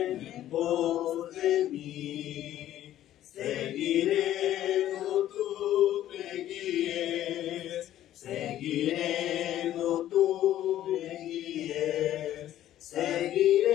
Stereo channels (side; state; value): right; quieter; 12.6 dB